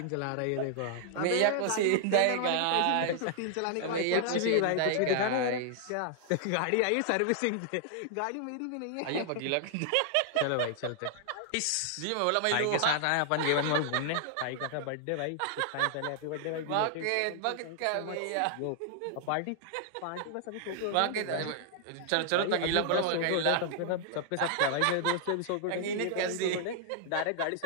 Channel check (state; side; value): different; both; correlation -0.01